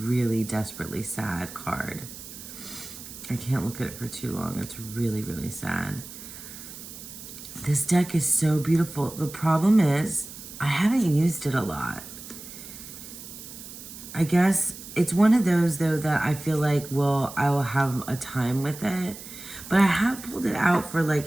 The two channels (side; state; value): right; noise; hiss, 14 dB below the sound